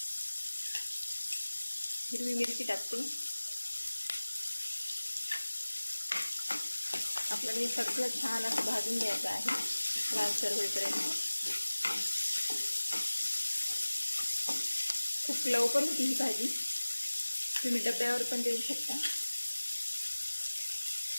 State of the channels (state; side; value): inverted; both; correlation -1.00